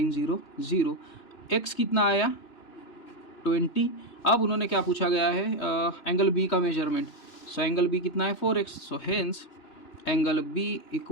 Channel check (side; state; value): right; late; 2.9 ms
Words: 0 0। x कितना आया 20। अब उन्होंने क्या पूछा गया है, एंगल B का मेजरमेंट। सो एंगल B कितना है 4x, so hence angle B